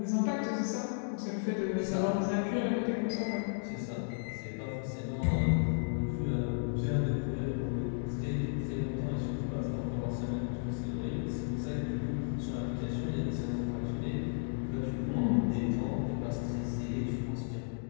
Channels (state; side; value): silent; right; digital silence